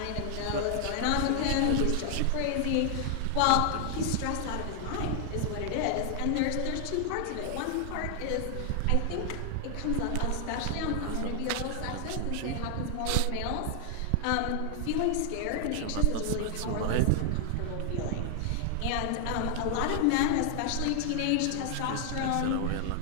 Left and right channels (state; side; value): different; both; correlation 0.00